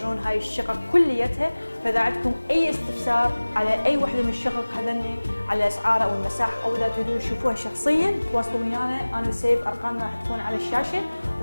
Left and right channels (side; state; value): both; inverted; correlation -1.00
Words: هاي الشقق كليتها. فاذا عندكم اي استفسار على اي وحده من الشقق هذني على اسعارها او المساحه او اذا تريدون تشوفوها شخصيا تواصلوا ويانا، انا وسيف ارقامنا راح تكون على الشاشه.